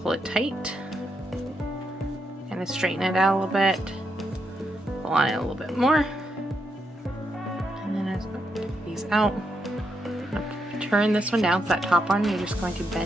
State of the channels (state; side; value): normal; both; correlation 0.81